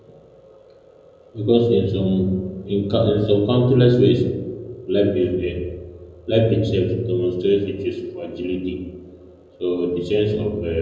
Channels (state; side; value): identical; both; correlation 1.00